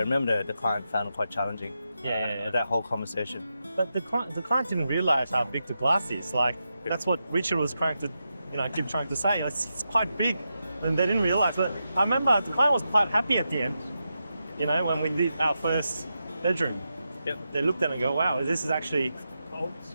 the client found it quite challenging. That whole conversation. But the client didn't realize how big the glass is. Like that's what Richard was trying to, keep trying to say. It's quite big, and they didn't realize. But I remember the client was quite happy at the end. When we did our first bedroom, they looked at it and go, "Wow, this is actually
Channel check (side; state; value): both; inverted; correlation -0.87